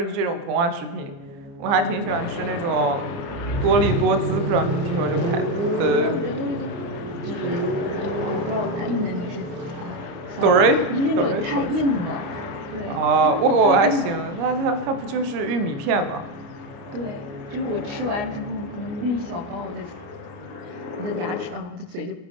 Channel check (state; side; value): late; left; 30 ms